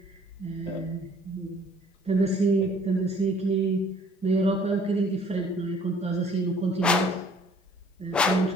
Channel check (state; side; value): normal; both; correlation 0.57